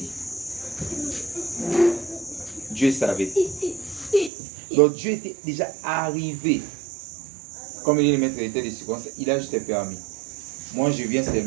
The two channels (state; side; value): drops out; left; at 4.3 s